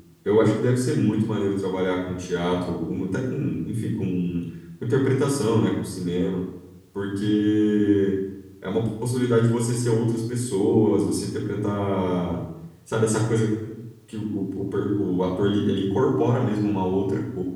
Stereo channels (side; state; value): both; identical; correlation 1.00